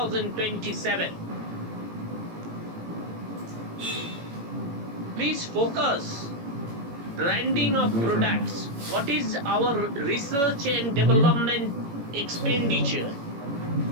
Please focus. Branding of products. What is our research and development expenditure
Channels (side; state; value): left; late; 18 ms